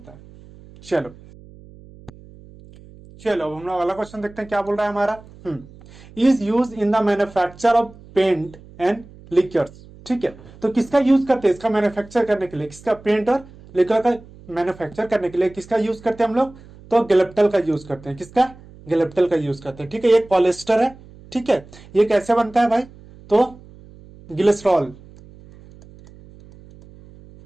है। चलो चलो अब हम लोग अगला क्वेश्चन देखते हैं क्या बोल रहा है हमारा, is use in the manufacture of paint and liquors, ठीक है। तो किसका यूज करते हैं, इसका मैन्युफैक्चर करने के लिए, किसका, पेंट और लिक्वर का मैन्युफैक्चर करने के लिए किसका यूज करते हैं हम लोग, तो गैलेप्टल का यूज करते हैं, किसका, गैलेप्टल का यूज करते हैं, ठीक है। ये पॉलिएस्टर है, ठीक है। ये कैसे बनता है भाई, तो ग्लिसरॉल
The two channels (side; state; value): right; noise; hum, 22 dB below the sound